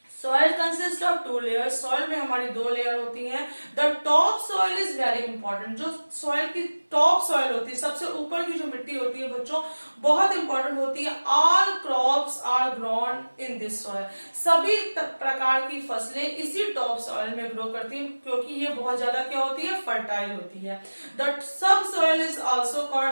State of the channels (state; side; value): inverted; both; correlation -1.00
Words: Soil consist of two layers, soil में हमारी दो लेयर होती हैं। The top soil is very important, जो soil की top soil होती है, सबसे ऊपर की जो मिट्टी होती है बच्चों, बहुत इंपॉर्टेंट होती है। All crops are grown in this soil, सभी प्रकार की फसलें इसी टॉप सॉइल में ग्रो करती हैं क्योंकि ये बहुत ज्यादा क्या होती है, फर्टाइल होती है। The sub soil is also